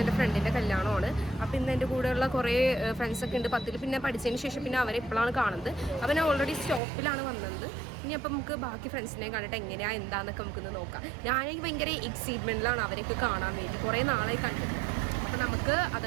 എൻ്റെ ഫ്രണ്ടിൻ്റെ കല്യാണമാണ്. അപ്പോൾ ഇന്ന് എൻ്റെ കൂടെയുള്ള കുറേ ഫ്രണ്ട്സൊക്കെ ഉണ്ട് 10ൽ. പിന്നെ പഠിച്ചതിന് ശേഷം പിന്നെ അവരെ ഇപ്പോഴാണ് കാണുന്നത്. അപ്പോൾ ഞാൻ ഓൾറെഡി സ്റ്റോപ്പിലാണ് വന്നത്. ഇനി അപ്പം നമുക്ക് ബാക്കി ഫ്രണ്ട്സിനെ കണ്ടിട്ട് എങ്ങനെയാണ് എന്താണെന്നൊക്കെ നമുക്കൊന്ന് നോക്കാം. ഞാനെനിക്ക് ഭയങ്കര എക്സൈറ്റ്മെൻറ്റിലാണ് അവരെയൊക്കെ കാണാൻ വേണ്ടി. കുറേ നാളായി കണ്ടിട്ട്. അപ്പോൾ നമുക്ക്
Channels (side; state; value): left; drops out; at 6.8 s